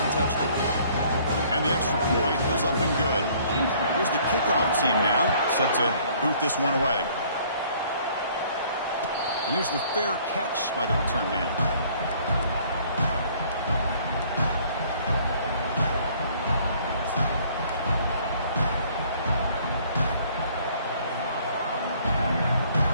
and touchdowns. And the extra point was up and good. Here's the kickoff team now, set to boot this one away. And here's the fair catch by the return man.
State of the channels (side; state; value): both; inverted; correlation -0.58